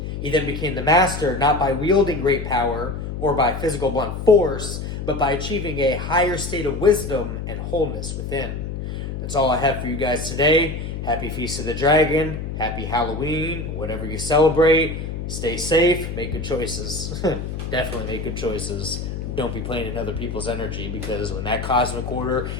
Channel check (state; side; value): noise; left; hum, 5 dB below the sound